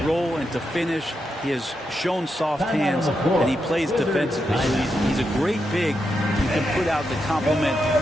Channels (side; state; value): both; normal; correlation 0.85